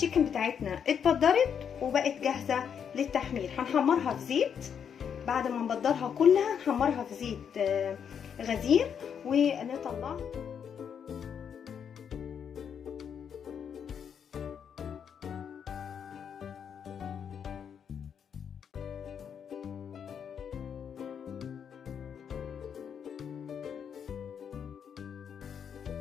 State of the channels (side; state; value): right; quieter; 7.7 dB